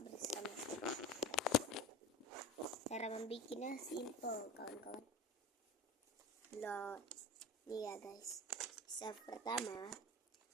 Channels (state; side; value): normal; both; correlation 0.33